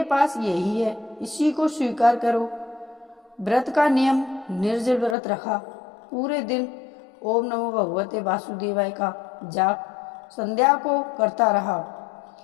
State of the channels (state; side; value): drops out; right; at 5.2 s